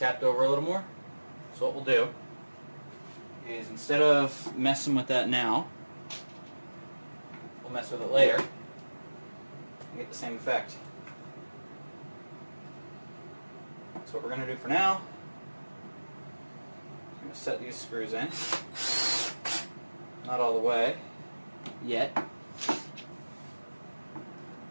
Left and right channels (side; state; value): both; inverted; correlation -1.00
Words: over a little more. So what we'll do is, instead of messing with that now, we'll mess with it later and get the same effect. That's what we're going to do for now. I'm going to set these screws in. Not all the way yet.